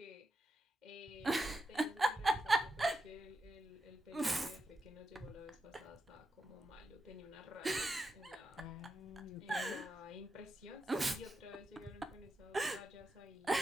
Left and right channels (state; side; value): normal; both; correlation 0.86